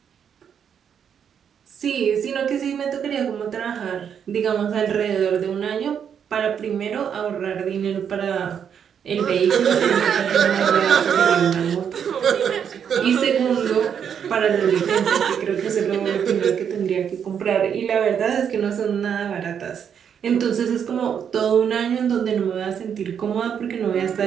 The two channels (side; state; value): left; quieter; 7.9 dB